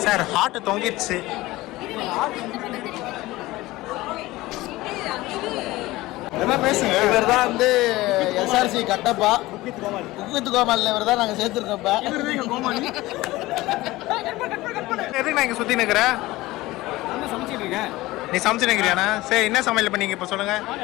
சார். ஹார்ட் தொங்கிடுச்சு. என்ன பேசுங்க. இவர் தான் வந்து எஸ்ஆர்சி கட்டப்பா குக்வித் கோமாளி. இவர் தான் நாங்கள் சேர்த்துருக்கோம்ப்பா. எதுக்கு நான் இங்கே சுற்றி நிற்கிறேன்? நீ சமைச்சு நிற்கிறியாண்ணா? சரி, என்ன சமையல் பண்ணீங்க இப்போ சொல்லுங்க.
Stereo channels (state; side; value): quieter; right; 18.8 dB